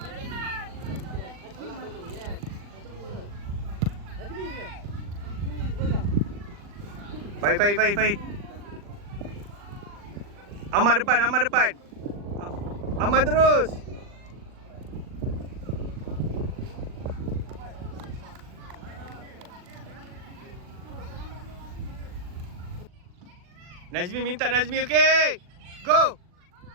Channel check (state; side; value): late; left; 40 ms